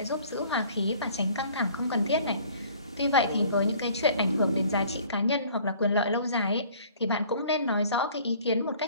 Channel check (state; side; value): inverted; both; correlation -0.53